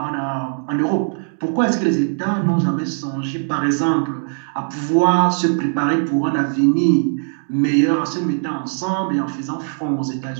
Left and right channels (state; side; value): silent; left; 66 dB below the other